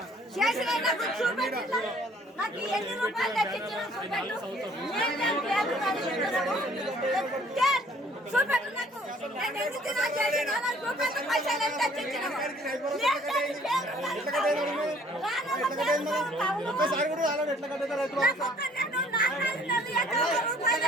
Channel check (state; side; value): normal; both; correlation 0.58